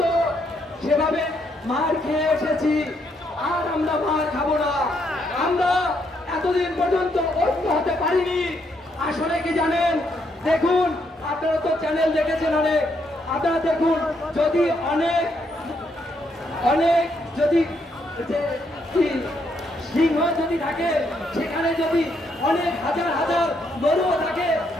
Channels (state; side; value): normal; both; correlation 0.75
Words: সেভাবে মার খেয়ে এসেছি, আর আমরা মার খাবো না। আমরা এতদিন পর্যন্ত ঐক্য হতে পারিনি। আসলে কি জানেন, দেখুন আপনারা তো চ্যানেল দেখেছেন অনেক, আপনারা দেখুন যদি অনেক যদি সিংহ যদি থাকে, সেখানে যদি অনেক হাজার হাজার গরুও থাকে,